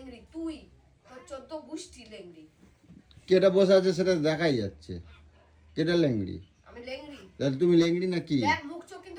তুই তোর 14 গোষ্ঠী লেংড়ি। কেটা বসে আছে সেটা দেখাই যাচ্ছে, কেটা লেংড়ি। আমি লেংড়ি? তাহলে তুমি লেংড়ি না কি? দেখ মুখ চোখ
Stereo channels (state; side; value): identical; both; correlation 1.00